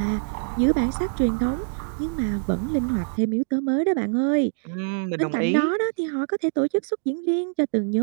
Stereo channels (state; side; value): silent; left; digital silence